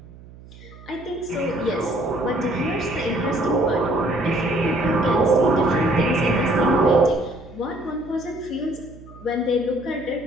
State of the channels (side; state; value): right; noise; hum, 20 dB below the sound